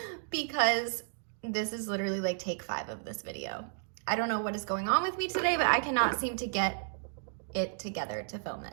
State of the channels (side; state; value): left; silent; digital silence